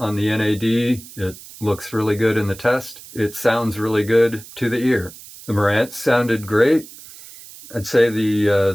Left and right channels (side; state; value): right; noise; hiss, 18 dB below the sound